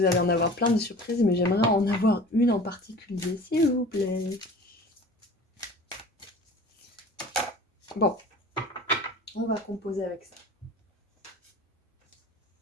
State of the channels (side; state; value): both; normal; correlation 0.41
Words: allez en avoir plein de surprises, mais j'aimerais en avoir une en particulier, s'il vous plaît. Bon, on va composer avec ça.